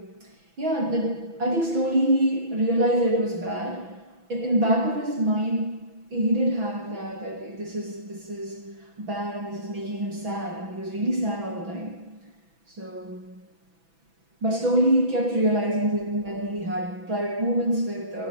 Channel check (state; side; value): late; left; 6.0 ms